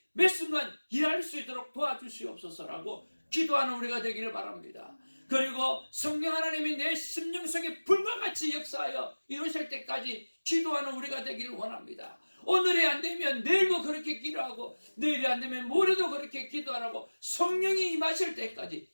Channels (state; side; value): inverted; both; correlation -1.00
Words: 매 순간 일할 수 있도록 도와주시옵소서라고 기도하는 우리가 되기를 바랍니다. 그리고 성령 하나님이 내 심령 속에 불과 같이 역사하여 이루실 때까지 기도하는 우리가 되기를 원합니다. 오늘이 안 되면 내일도 그렇게 기도하고, 내일이 안 되면 모레도 그렇게 기도하라고 성령이 임하실